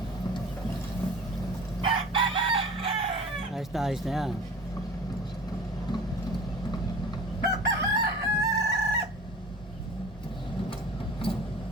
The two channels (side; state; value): both; normal; correlation 0.41